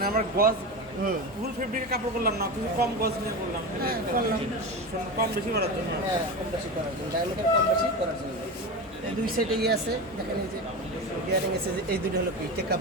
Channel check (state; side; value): normal; both; correlation 0.23